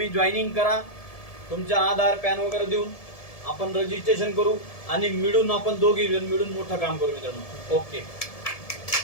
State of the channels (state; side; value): late; right; 1.7 ms